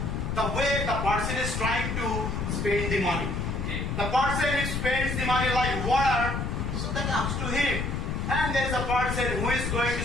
the way the person is trying to spend the money. Okay. The person who spends the money like water, so that up to him. And there is a person who is going to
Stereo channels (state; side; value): noise; left; rumble, 2 dB below the sound